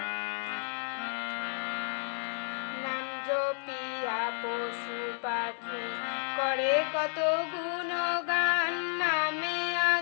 জপিয়া পশু পাখি করে কত গুণগান নামে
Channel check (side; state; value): right; silent; 57 dB below the other